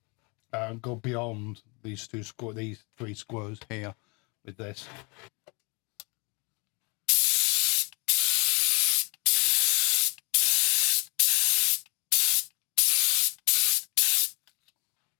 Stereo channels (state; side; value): quieter; right; 30.5 dB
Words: go beyond these three squares here with this.